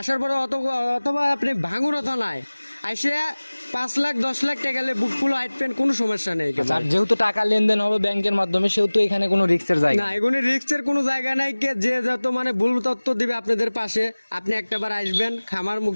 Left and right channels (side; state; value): both; inverted; correlation -1.00